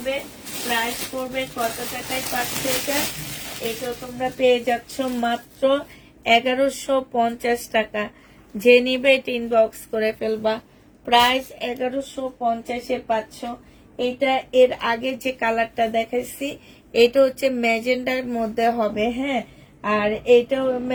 প্রাইস পড়বে কত টাকায় পাচ্ছে এটা? এটা তোমরা পেয়ে যাচ্ছ মাত্র 1150 টাকা। যে নিবে এটা ইনবক্স করে ফেলবা। প্রাইস 1150-এ পাচ্ছ। এটা এর আগে যে কালারটা দেখাইছি এটা হচ্ছে ম্যাজেন্ডার মধ্যে হবে, হ্যাঁ। আর এইটাও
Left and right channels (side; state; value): both; identical; correlation 1.00